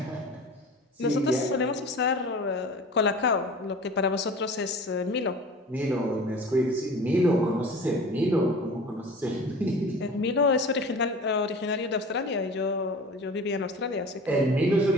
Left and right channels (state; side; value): normal; both; correlation 0.39